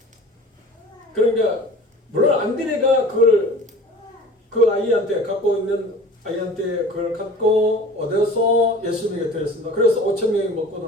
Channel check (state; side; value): normal; both; correlation 0.41